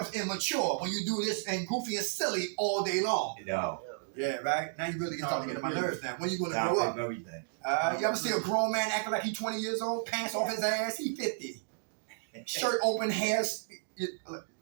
immature when you do this and goofy and silly all day long. You know, Yeah, right? Now you really get starting to get on my nerves now. When you gonna top grow of up? everything. You ever see a grown man acting like he's 20 years old, pants off his ass? He 50. Shirt open, hair.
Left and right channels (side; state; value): left; silent; digital silence